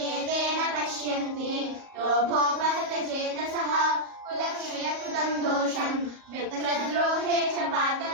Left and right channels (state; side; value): late; left; 38 ms